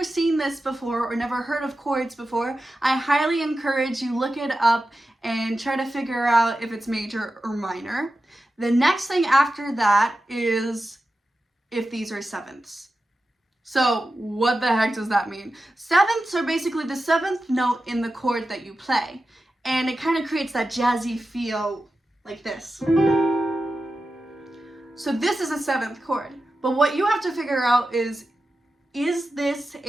seen this before or never heard of chords before, I highly encourage you look it up and try to figure out if it's major or minor. The next thing after that is if these are sevenths. So what the heck does that mean? Sevenths are basically the seventh note in the chord that you play, and it kind of creates that jazzy feel like this. So this is a seventh chord, but what you have to figure out is this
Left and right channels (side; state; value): both; normal; correlation 0.92